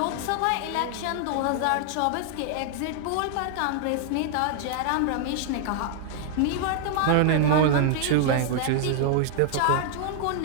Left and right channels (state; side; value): different; both; correlation 0.00